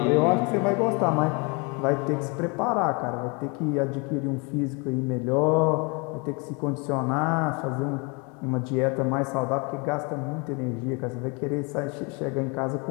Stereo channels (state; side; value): quieter; right; 30.3 dB